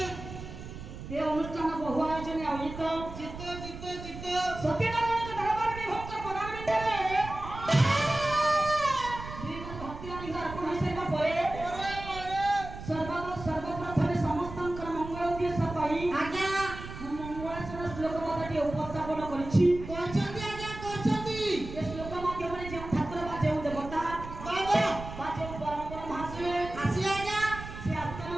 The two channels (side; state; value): right; noise; rumble, 11 dB below the sound